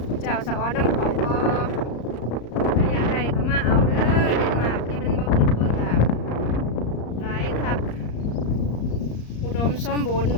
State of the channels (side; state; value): right; late; 34 ms